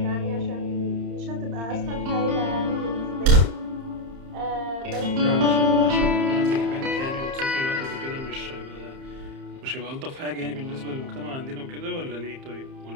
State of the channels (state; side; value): late; left; 30 ms